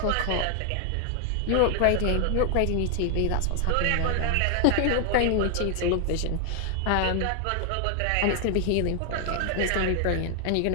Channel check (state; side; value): different; both; correlation 0.00